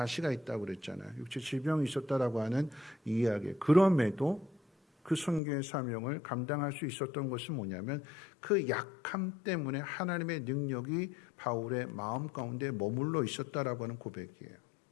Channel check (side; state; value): right; drops out; at 5.4 s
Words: 있다고 그랬잖아요. 육체 질병이 있었다라고 하는 이야기. 그럼에도 그 선교의 사명을 감당할 수 있었던 것은 뭐냐면 그 약함 때문에 하나님의 능력이 바울의 마음 가운데 머물러 있었다라고 하는 고백이에요.